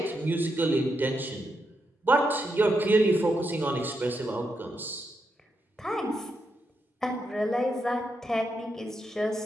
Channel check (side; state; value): both; normal; correlation 0.83